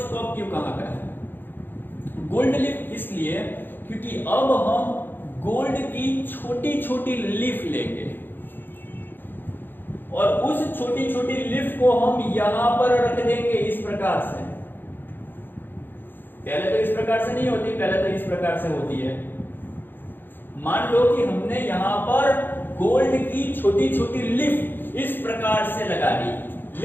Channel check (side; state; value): right; late; 0.096 ms